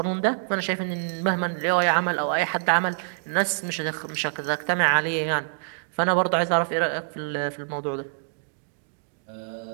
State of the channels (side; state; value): left; silent; digital silence